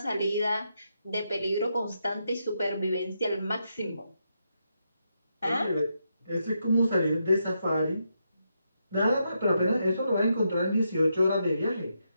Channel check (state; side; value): inverted; both; correlation -0.82